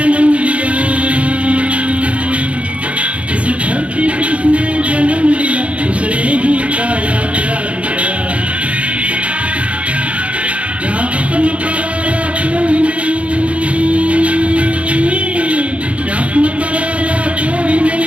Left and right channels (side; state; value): left; late; 0.063 ms